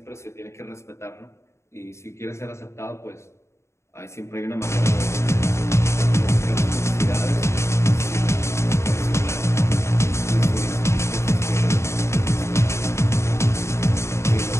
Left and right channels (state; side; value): late; right; 0.13 ms